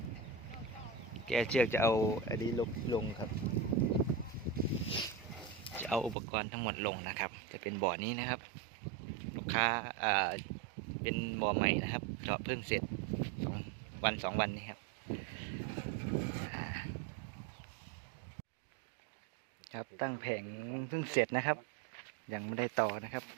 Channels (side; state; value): left; drops out; at 6.2 s